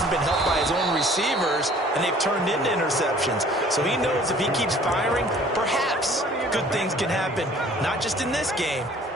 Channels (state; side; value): normal; both; correlation 0.53